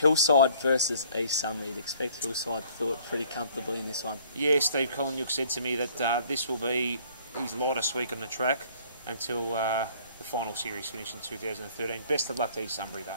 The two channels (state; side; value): inverted; both; correlation -0.58